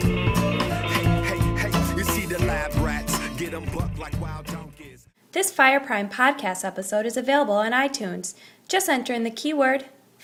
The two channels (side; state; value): both; identical; correlation 1.00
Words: You see the lab rats, get them bucked like wild donkeys. This Fireprime podcast episode is available on iTunes. Just enter in the keyword